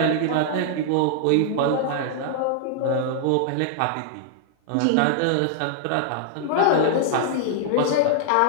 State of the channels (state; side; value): different; both; correlation 0.00